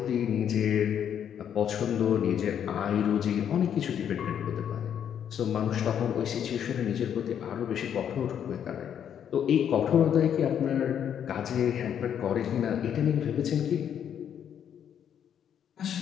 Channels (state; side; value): quieter; right; 9.0 dB